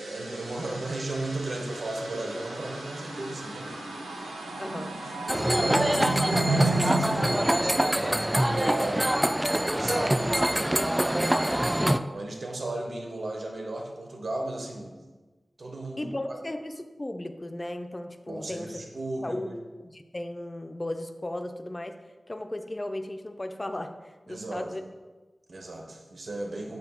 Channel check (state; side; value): normal; both; correlation 0.97